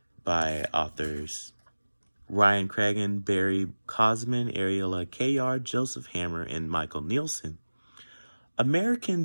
by authors Ryan Cragen, Barry Cosman, Ariella Kayar, Joseph Hammer, and Michael Nielsen,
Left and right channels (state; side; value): inverted; both; correlation -1.00